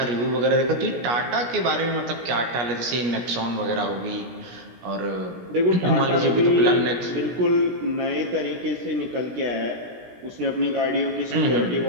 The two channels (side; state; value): left; late; 17 ms